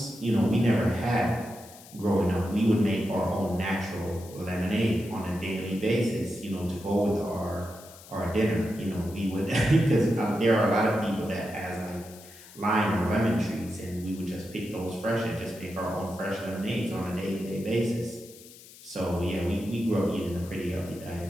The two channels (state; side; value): noise; left; hiss, 20 dB below the sound